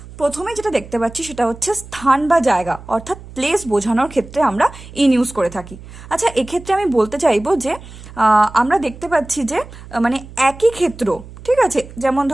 প্রথমে যেটা দেখতে পাচ্ছি সেটা হচ্ছে স্থান বা জায়গা অর্থাৎ প্লেস বোঝানোর ক্ষেত্রে আমরা ইন ইউজ করে থাকি। আচ্ছা, এক্ষেত্রে আমি বলতে চাইবো যে আমরা দেখতে পাচ্ছি যে মানে একই ক্ষেত্র, ঠিক আছে, যেমন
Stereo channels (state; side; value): noise; right; hum, 17 dB below the sound